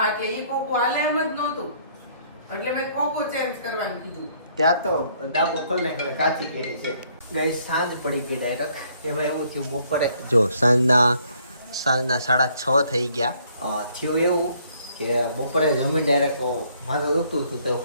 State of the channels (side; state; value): both; inverted; correlation -0.65